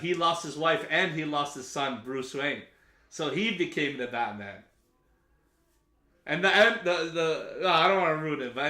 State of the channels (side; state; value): both; identical; correlation 1.00